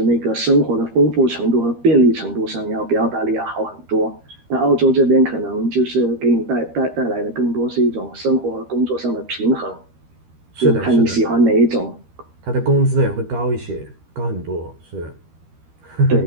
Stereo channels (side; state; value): left; late; 13 ms